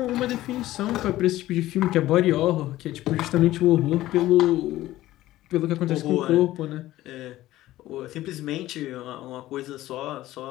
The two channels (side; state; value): right; quieter; 15.5 dB